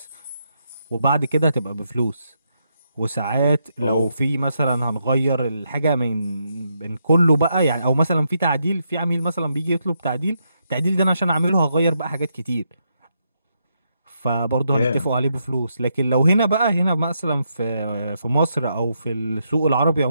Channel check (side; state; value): both; inverted; correlation -0.80